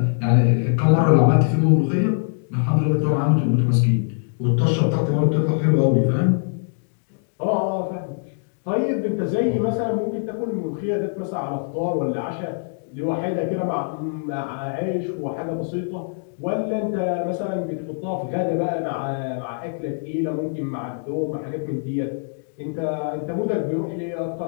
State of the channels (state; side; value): silent; right; digital silence